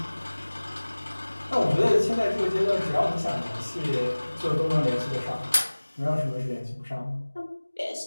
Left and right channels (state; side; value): inverted; both; correlation -1.00